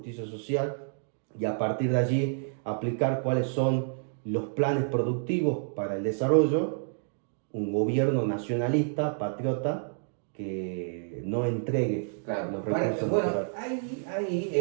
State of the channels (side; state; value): left; silent; digital silence